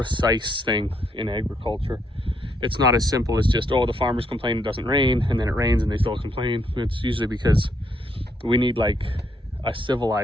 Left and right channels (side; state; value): both; normal; correlation 0.74